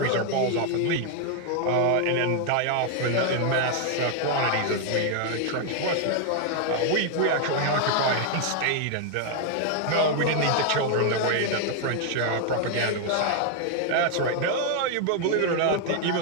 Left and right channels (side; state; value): both; different; correlation 0.00